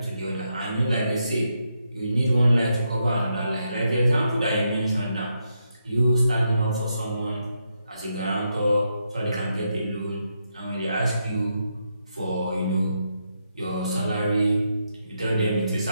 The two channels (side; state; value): both; inverted; correlation -0.82